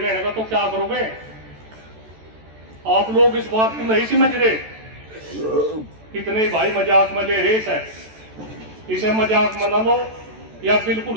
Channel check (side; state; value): left; late; 14 ms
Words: तो क्या करोगे? आप लोग इस बात को नहीं समझ रहे। कितने भाई मजाक में ले रेस है, इसे मजाक मना लो या